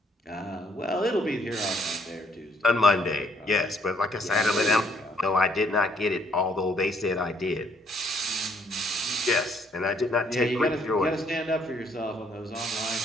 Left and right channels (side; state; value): both; normal; correlation 0.67